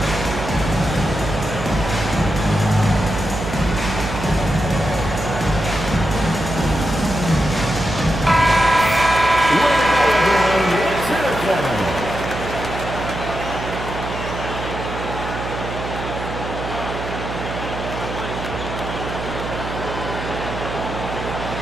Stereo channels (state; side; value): noise; right; hum, 7 dB below the sound